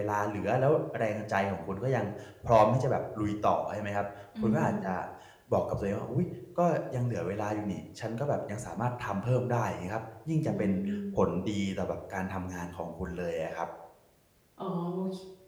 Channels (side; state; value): both; identical; correlation 1.00